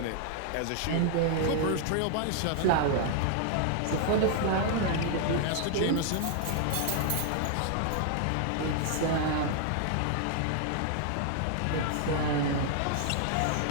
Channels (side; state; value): both; different; correlation 0.00